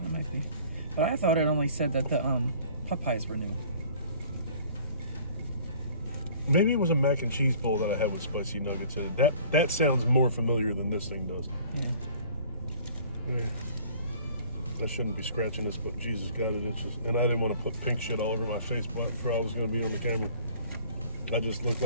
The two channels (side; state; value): both; inverted; correlation -0.51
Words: might be. But I thought it only said that the pot pies were new. Maybe it was a mac and cheese bowl that I had with spicy nuggets in it. That sounds more familiar than this thing does. Yeah. I shouldn't be scratching this, but Jesus got it itches. And I didn't want to put pink shit all over my face before I was going to be on the camera. I just looked